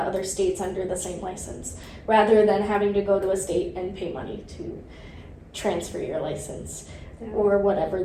states under the same license rather than having to go to a state and pay money to transfer your license. Yeah. Or whatever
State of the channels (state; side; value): identical; both; correlation 1.00